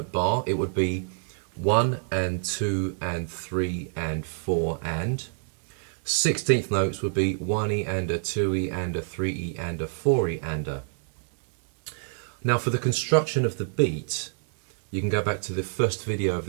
bar, it would be 1 and 2 and 3 and 4 and. 16th notes would be 1E and a 2E and a 3E and a 4E and a. Now for the construction of the beat, you can go back to the first video of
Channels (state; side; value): silent; left; digital silence